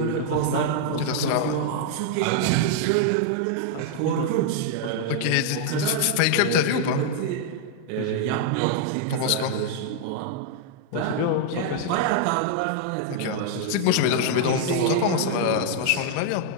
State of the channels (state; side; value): different; both; correlation -0.01